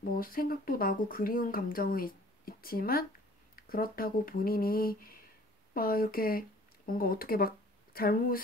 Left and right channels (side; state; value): both; normal; correlation 0.52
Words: 뭐 생각도 나고 그리운 감정은 있지만 그렇다고 본인이 막 이렇게 뭔가 어떻게 막